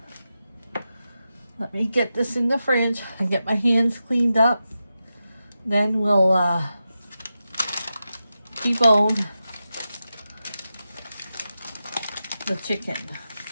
Let me get this in the fridge and get my hands cleaned up. Then we'll debone the chicken.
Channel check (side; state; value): both; inverted; correlation -0.90